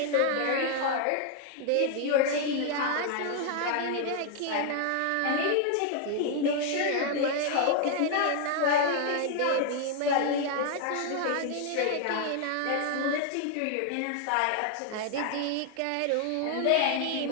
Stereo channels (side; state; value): both; different; correlation 0.00